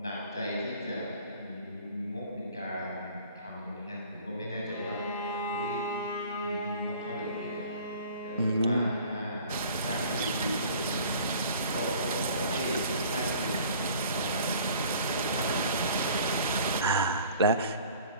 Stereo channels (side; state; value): both; inverted; correlation -0.49